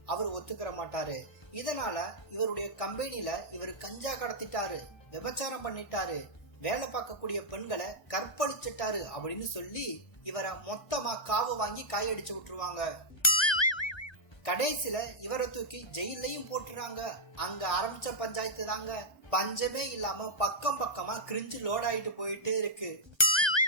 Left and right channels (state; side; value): late; right; 1.3 ms